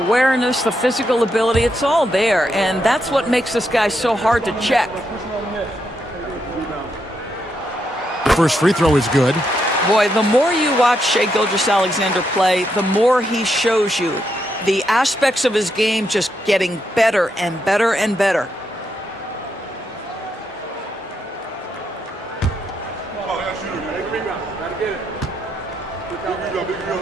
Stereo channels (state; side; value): normal; both; correlation 0.80